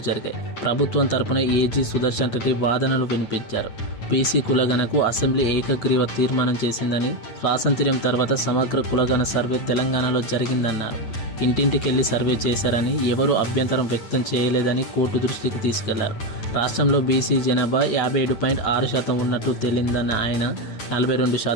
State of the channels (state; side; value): late; right; 8.9 ms